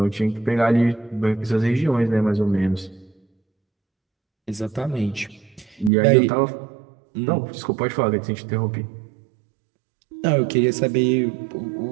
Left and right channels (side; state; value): left; drops out; at 5.9 s